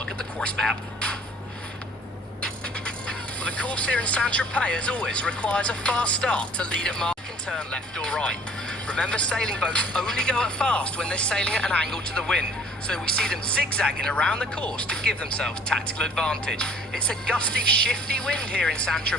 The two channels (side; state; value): both; normal; correlation 0.53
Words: at the course map. Well, the course here in Saint-Tropez, as always, requires a fast start to lead at mark and turn left or right. Remember, sailing boats only go at fast when they're sailing at an angle to the wind, so we see them zigzagging around the course to give themselves tactical advantage. It's a gusty, shifty wind here in